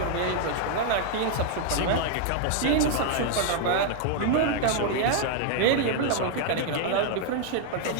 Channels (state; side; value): different; both; correlation 0.00